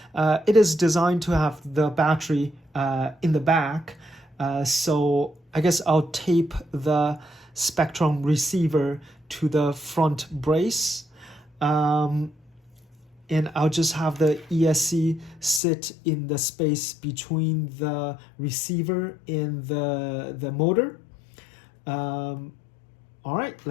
It is designed to have the battery in the back, so I guess I'll tape the Spectrum receiver to the front brace. And I'll just have the ESC sit in the space between the receiver and the motor. All right,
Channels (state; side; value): drops out; right; at 15.6 s